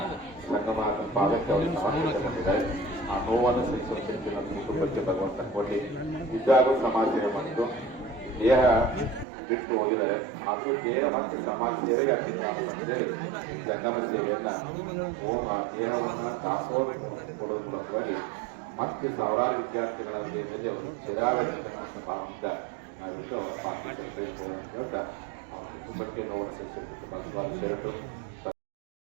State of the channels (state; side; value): drops out; left; at 9.2 s